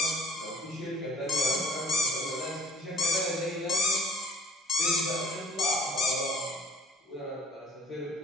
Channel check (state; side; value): normal; both; correlation 0.52